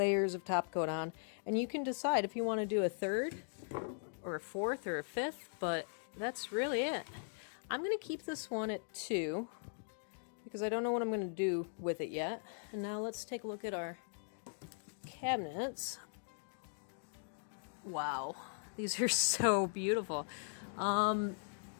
of top coat on, and you can decide if you want to do a 3rd or a 4th or a 5th, but that's really it. I'm going to keep this one at 2 because I don't know what I'm going to do with it yet. And now let's take a look at our cabinets. Wow, these are so beautiful.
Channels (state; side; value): silent; right; digital silence